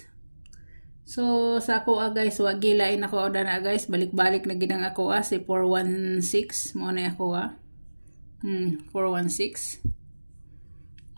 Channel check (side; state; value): both; inverted; correlation -1.00